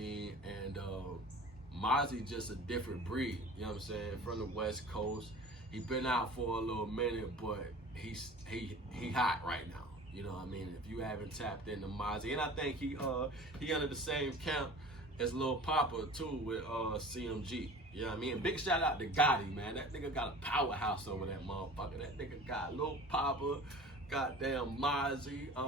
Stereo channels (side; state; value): both; normal; correlation 0.41